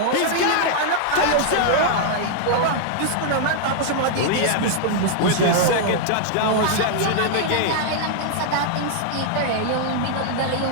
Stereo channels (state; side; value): different; both; correlation -0.01